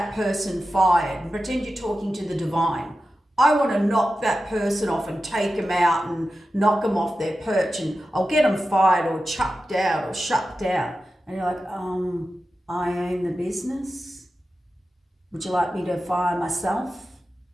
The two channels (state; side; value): normal; both; correlation 0.92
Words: person fired and pretend you're talking to the divine. I want to knock that person off and take them out and knock them off their perch, and I'll get them fired or chucked out or shut down. And you're like, I own the business. Would you like me to fire myself?